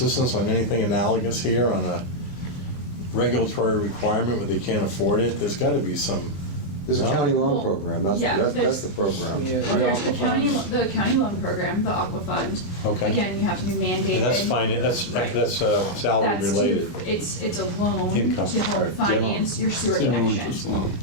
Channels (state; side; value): late; right; 22 ms